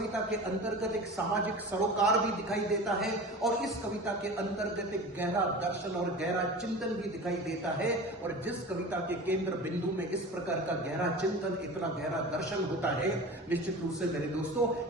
के अंतर्गत एक सामाजिक सरोकार भी दिखाई देता है, और इस कविता के अंतर्गत एक गहरा दर्शन और गहरा चिंतन भी दिखाई देता है। और जिस कविता के केंद्र बिंदु में इस प्रकार का गहरा चिंतन, इतना गहरा दर्शन होता है, निश्चित रूप से मेरे दोस्तों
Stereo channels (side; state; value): both; normal; correlation 0.34